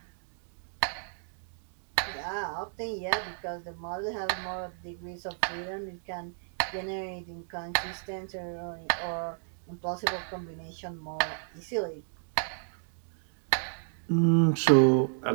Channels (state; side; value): silent; left; 56 dB below the other